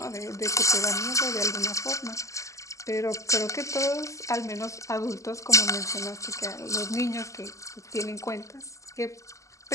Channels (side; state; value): right; late; 0.15 ms